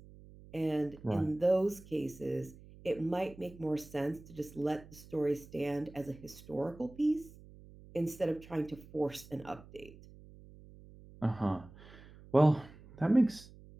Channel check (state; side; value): noise; right; hum, 20 dB below the sound